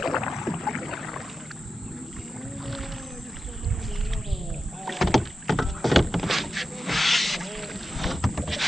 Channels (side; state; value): both; normal; correlation 0.90